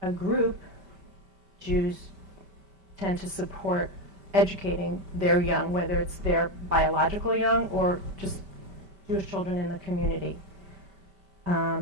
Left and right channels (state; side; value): late; left; 5.1 ms